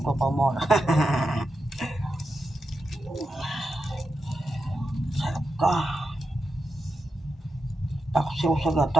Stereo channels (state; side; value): normal; both; correlation 0.88